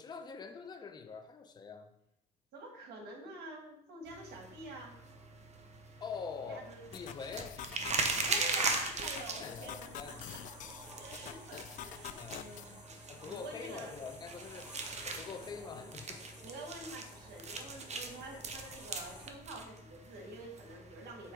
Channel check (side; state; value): both; normal; correlation 0.08